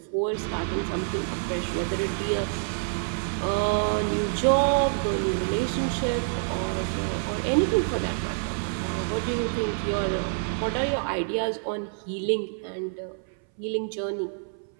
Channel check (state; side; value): silent; left; 60 dB below the other